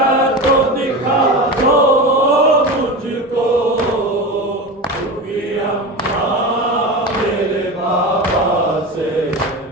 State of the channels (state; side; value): normal; both; correlation 0.26